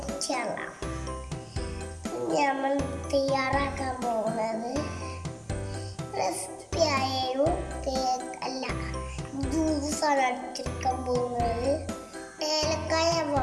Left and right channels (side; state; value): both; identical; correlation 1.00